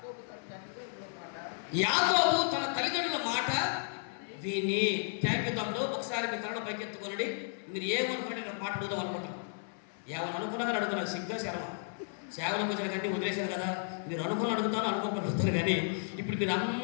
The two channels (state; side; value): silent; right; 56 dB below the other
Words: యాకోబు తన తల్లిదండ్రుల మాట విని. థ్యాంక్ యూ తమ్ముడు. ఒకసారి మీ తరణ పైకి ఎత్తుకోనండి. మీరు ఏమనుకుంటే నేను మాట అడుగుదాం అనుకుంటాను. ఏమని అనుకున్నా కానీ అడుగుతున్నాను. సిగ్గా శరమ సేవలకు వచ్చిన కంటే వదిలేశారు కదా. మీరు అనుకుని అడుగుతాను, అనుకోకుండా అడుగుతారు. కానీ ఇప్పుడు మీరు